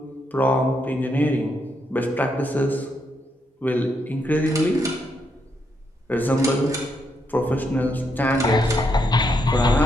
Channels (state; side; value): normal; both; correlation 0.78